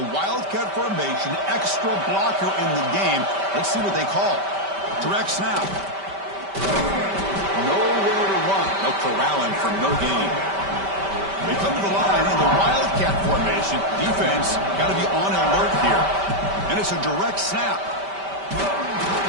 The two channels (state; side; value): late; left; 5.1 ms